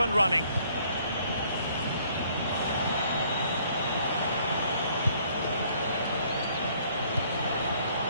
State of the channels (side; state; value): both; inverted; correlation -0.62